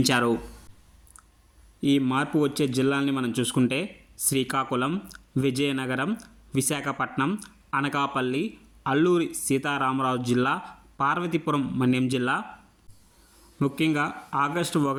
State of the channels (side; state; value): both; identical; correlation 1.00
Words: ఈ మార్పు వచ్చే జిల్లాల్ని మనం చూసుకుంటే శ్రీకాకుళం, విజయనగరం, విశాఖపట్నం, అనకాపల్లి, అల్లూరి సీతారామరాజు జిల్లా, పార్వతీపురం మన్యం జిల్లా. ముఖ్యంగా ఆగస్టు